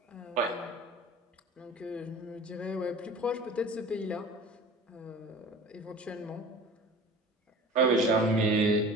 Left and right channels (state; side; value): normal; both; correlation 0.40